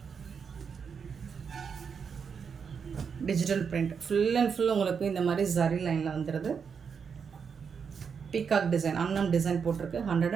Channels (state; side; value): quieter; left; 6.4 dB